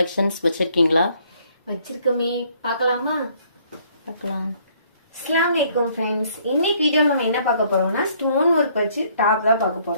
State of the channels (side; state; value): both; inverted; correlation -0.64